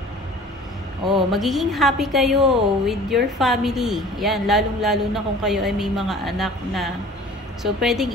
Oh, magiging happy kayo with your family. Yan, lalong-lalo na kung kayo ay may mga anak na. So, pwedeng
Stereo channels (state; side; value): normal; both; correlation 0.45